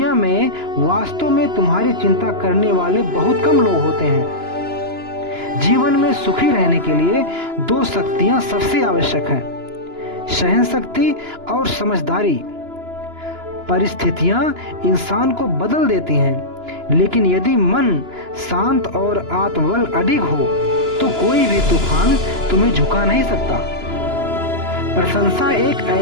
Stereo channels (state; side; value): late; left; 2.9 ms